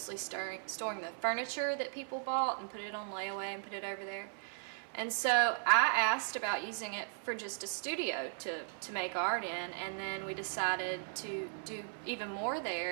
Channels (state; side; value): silent; left; 53 dB below the other